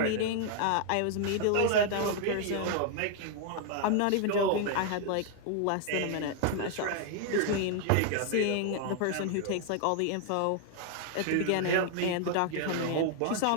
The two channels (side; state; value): both; different; correlation 0.00